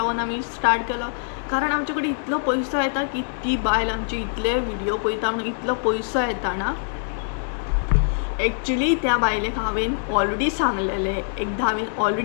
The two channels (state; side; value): silent; right; digital silence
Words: आमी स्टार्ट केलो कारण आमचे कडेन इतलो पयसो येता की ती बायल आमचे इतले व्हिडिओ पळयता म्हणून इतलो पयसो येता ना. एक्चुली त्या बायलेक हांवें ऑलरेडी सांगलेले, एकदां हांवें